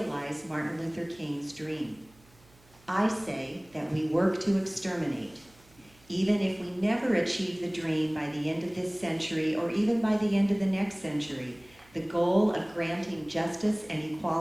Martin Luther King's dream? I say that we work to exterminate. Even if we never achieve the dream by the end of this century or even by the end of the next century, the goal of granting justice and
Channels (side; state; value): right; noise; hum, 29 dB below the sound